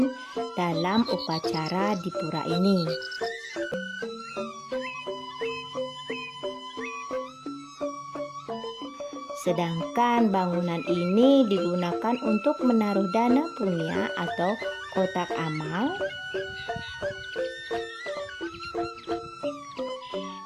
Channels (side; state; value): both; identical; correlation 1.00